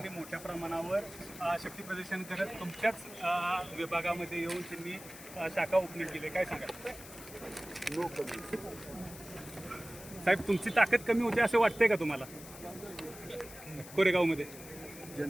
मोठ्या प्रमाणावर शक्ती प्रदर्शन करत तुमच्याच विभागामध्ये येऊन त्यांनी शाखा ओपनिंग केली. काय सांगा नो कमी. साहेब, तुमची ताकद कमी होते असं वाटतंय का तुम्हाला कोरेगावमध्ये?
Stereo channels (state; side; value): noise; left; hiss, 15 dB below the sound